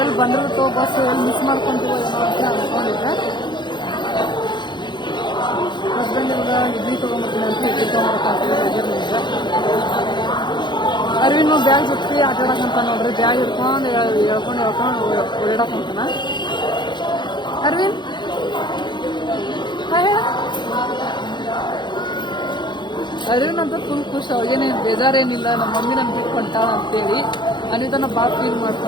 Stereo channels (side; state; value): right; late; 0.22 ms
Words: ಬಂದಿರುತ್ತೋ ಬಸ್ ಎಲ್ಲಿ ಮಿಸ್ ಮಾಡ್ಕೊಂತೀವೋ ಏನೋ ಅಂತ ಅನ್ಕೊಂಡಿದ್ದೆ. ಹಸ್ಬೆಂಡ್ ಎಲ್ಲ ಇಡ್ಲಿ ತೊಗೊಂಡ್ಬರ್ತೀನಿ ಅಂತ ಇಡ್ಲಿ ತೊಗೊಂಡ್ಬರ್ತೀನಿ. ಅರ್ವಿನು ಬ್ಯಾಗ್ ಜೊತೆ ಆಟಾಡಕಂತ ನೋಡ್ರಿ. ಬ್ಯಾಗ್ ಹಿಡ್ಕೊಂಡು ಹೇಳ್ಕೊಂಡು ಓಡಾಡಕಂತಾನ. ಅರ್ವಿನ್ ಹೇಳ. ಅರ್ವಿನ್ ಅಂತ ಫುಲ್ ಖುಷಿ. ಅವಾಗೇನೇ ಬೇಜಾರೇನಿಲ್ಲ. ನಮ್ಮ ಮಮ್ಮಿ ನನ್ ಬಿಟ್ಕೊಂತಾಳ ಅಂತೇಳಿ ಅನಿತನ ಭಾಳ ಫೀಲ್